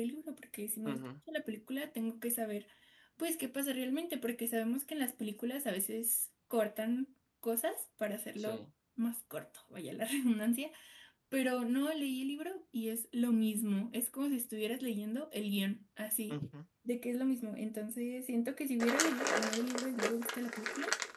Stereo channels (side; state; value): both; identical; correlation 1.00